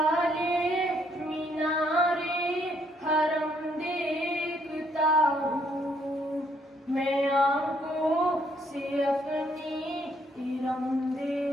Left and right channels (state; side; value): normal; both; correlation 0.69